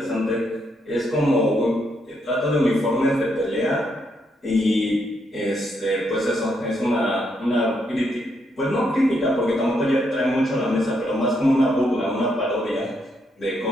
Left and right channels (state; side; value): normal; both; correlation 0.77